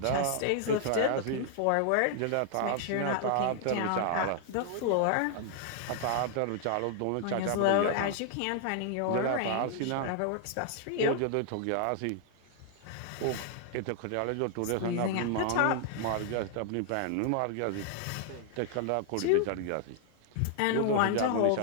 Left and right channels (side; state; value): both; different; correlation 0.00